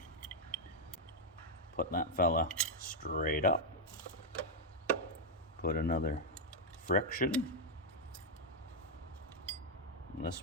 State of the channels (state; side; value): normal; both; correlation -0.01